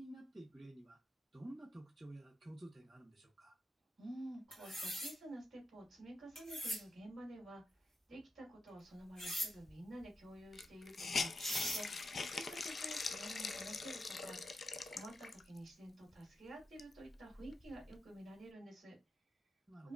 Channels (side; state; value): both; normal; correlation 0.87